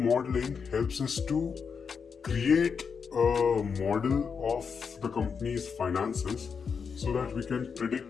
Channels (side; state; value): right; quieter; 6.0 dB